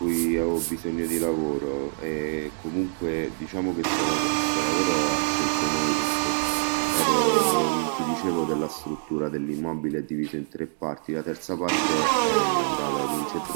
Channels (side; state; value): left; silent; digital silence